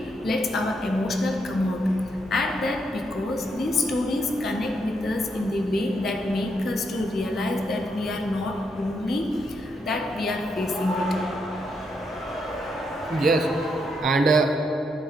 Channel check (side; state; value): both; normal; correlation 0.79